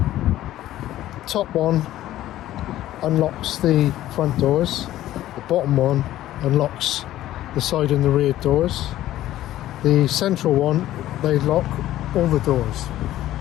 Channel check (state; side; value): quieter; right; 14.0 dB